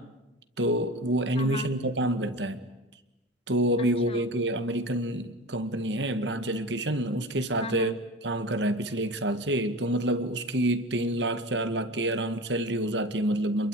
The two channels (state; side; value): normal; both; correlation 0.32